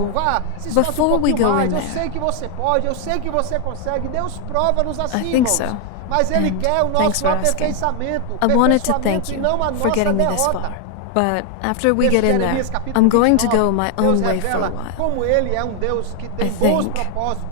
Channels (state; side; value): different; both; correlation 0.01